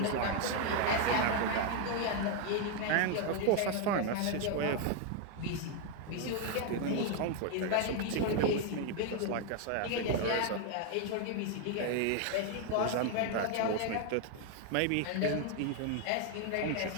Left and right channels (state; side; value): different; both; correlation 0.01